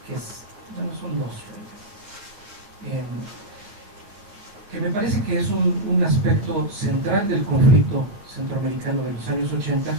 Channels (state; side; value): late; left; 9.6 ms